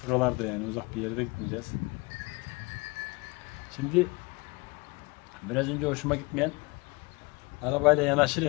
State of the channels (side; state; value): right; quieter; 26.8 dB